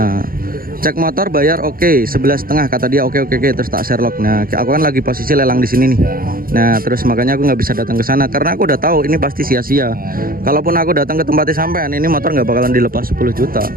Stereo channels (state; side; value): late; left; 0.42 ms